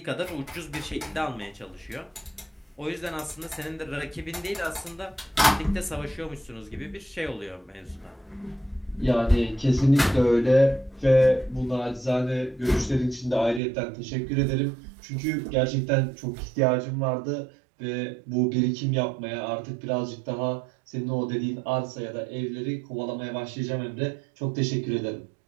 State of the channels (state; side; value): drops out; left; at 13.6 s